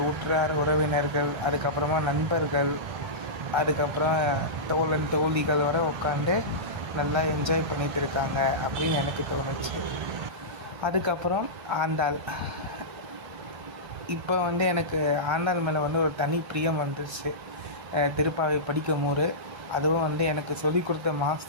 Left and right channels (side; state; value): left; late; 1.3 ms